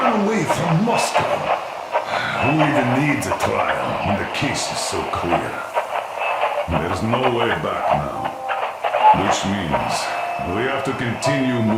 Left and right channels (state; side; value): identical; both; correlation 1.00